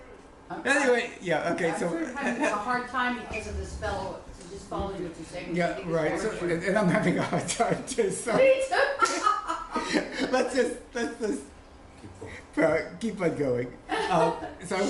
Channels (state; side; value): identical; both; correlation 1.00